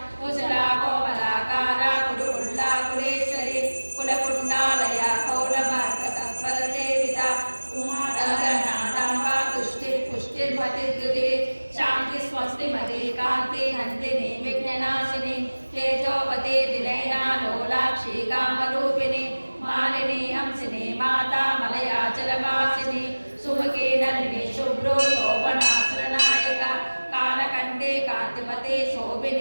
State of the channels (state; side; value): inverted; both; correlation -1.00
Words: कुशला कोमलाकारा कुरुकुल्ला कुलेश्वरी कुलकुण्डालया कौलमार्गतत्परसेविता उमादगनादाम्बा तुष्टिः पुष्टिर्मतिर्द्युतिः शान्ति स्वस्तिमती कान्ति हन्तिनी विघ्ननाशिनी तेजोवती विनयना लोलाक्षी कामरूपिणी मालिनी हंसिनी माता मलयाचलवासिनी सुमुखी नलिनी शुभ्रो शोभनासुरनायका कालकण्ठे कान्तिमती